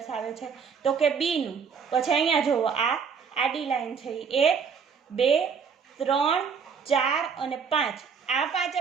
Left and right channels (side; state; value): left; quieter; 6.2 dB